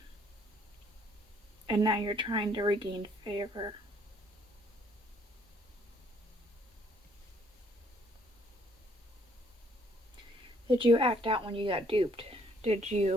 And now you're trying to regain favor. Did you act out when you got duped? Did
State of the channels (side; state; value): both; normal; correlation 0.65